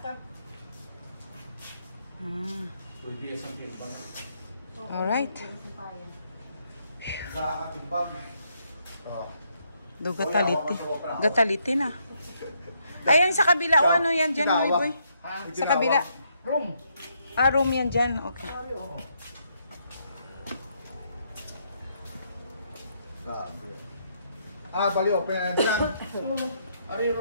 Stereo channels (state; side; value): inverted; both; correlation -0.75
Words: ka. Pwede yung sampir ba na? Alright. Sa atimbang. Do gataliti. Gataliti na. Ayan sa kabila. O ano yan dyan, boy boy? Sa kabila. Room. Room yan dyan. Okay. Bali, open na din lang. Ari